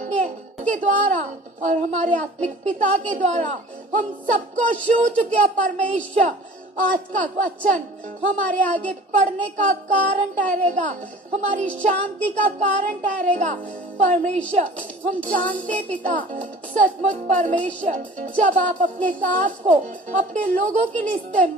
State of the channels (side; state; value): both; normal; correlation 0.44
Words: के द्वारा और हमारे आत्मिक पिता के द्वारा हम सबको छू चुके हैं परमेश्वर। आज का वचन हमारे आगे पढ़ने का कारण ठहरेगा, हमारी शांति का कारण ठहरेगा। परमेश्वर हम जानते पिता, सचमुच परमेश्वर, जब आप अपने दास को अपने लोगों के लिए